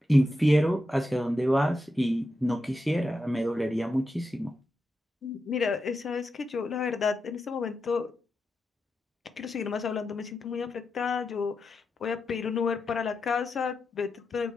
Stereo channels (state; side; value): normal; both; correlation 0.88